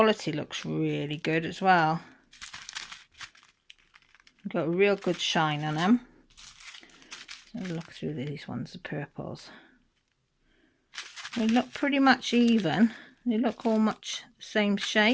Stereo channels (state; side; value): identical; both; correlation 1.00